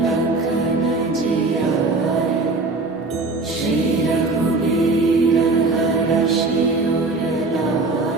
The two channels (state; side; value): quieter; left; 3.4 dB